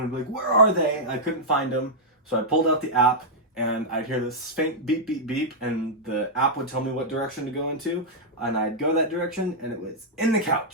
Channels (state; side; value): normal; both; correlation -0.07